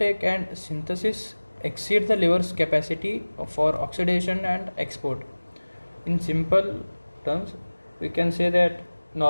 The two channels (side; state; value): both; inverted; correlation -1.00